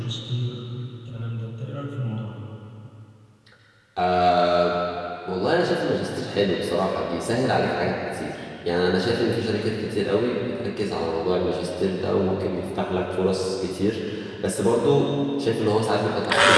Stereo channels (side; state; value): both; identical; correlation 1.00